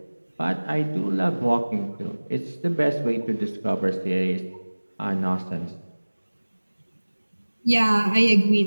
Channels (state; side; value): inverted; both; correlation -1.00